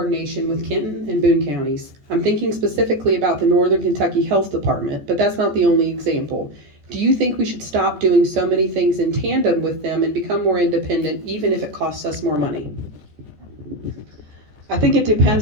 with Kenton and Boone counties. I'm thinking specifically about the Northern Kentucky Health Department, but that's not the only example. Do you think we should stop doing so many things in tandem with them and become more independent, even if it costs us more money? I think it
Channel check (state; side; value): late; left; 14 ms